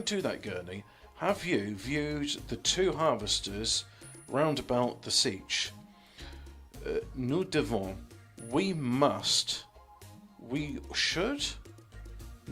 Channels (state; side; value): identical; both; correlation 1.00